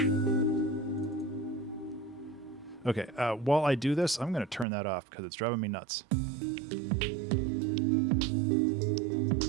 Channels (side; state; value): left; drops out; at 4.7 s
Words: Okay, while I do this, I'm going to turn that off because it's driving me nuts.